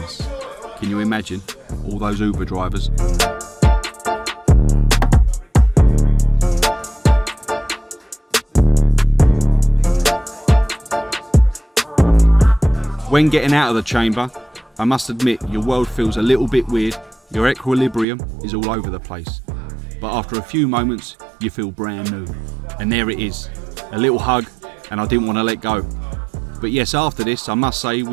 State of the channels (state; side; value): drops out; left; at 18.1 s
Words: Can you imagine? All those Uber drivers. When getting out of the chamber, I must admit your world feels a little bit weird, your equilibrium is all over the place. But after a few moments, you feel brand new. And there it is, a little hug, and I didn't want to let go. But yes, after this, I must say